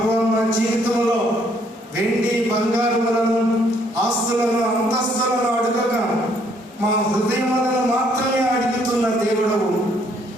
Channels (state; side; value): normal; both; correlation 0.67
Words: మా జీవితంలో వెండి బంగారములను, ఆస్తులను, అంతస్తులను అడగగా మా హృదయములను మాత్రమే అడుగుతున్న దేవుడవు,